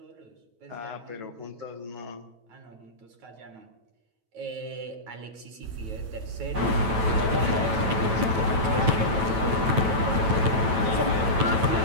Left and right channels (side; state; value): left; late; 9.0 ms